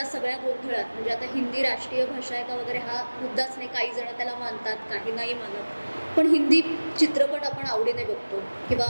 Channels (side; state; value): both; inverted; correlation -1.00